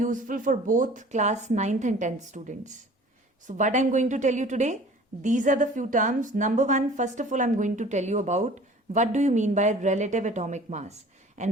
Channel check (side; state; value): both; normal; correlation 0.47